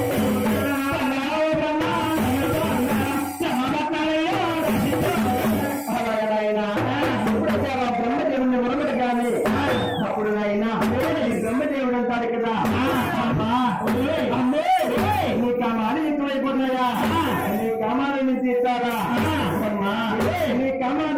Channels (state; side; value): identical; both; correlation 1.00